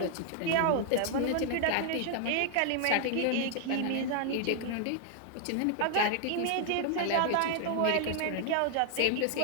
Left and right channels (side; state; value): both; different; correlation 0.00